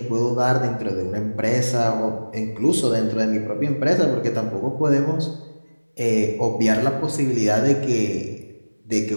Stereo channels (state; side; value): inverted; both; correlation -1.00